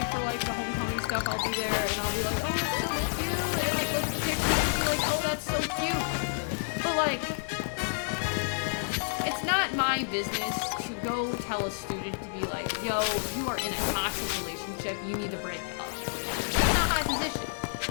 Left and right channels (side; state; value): right; silent; digital silence